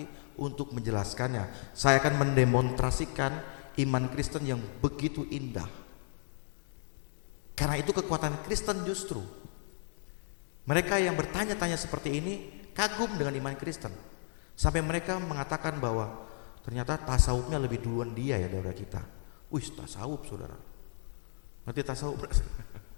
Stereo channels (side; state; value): right; silent; digital silence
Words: untuk menjelaskannya. Saya akan mendemonstrasikan iman Kristen yang begitu indah. Karena itu kekuatan Kristen justru. Mereka yang bertanya-tanya seperti ini kagum dengan iman Kristen. Sampai mereka mengatakan bahwa ternyata tasawufnya lebih duluan dia ya daripada kita. Wih, tasawuf, saudara. Nanti tasawuf.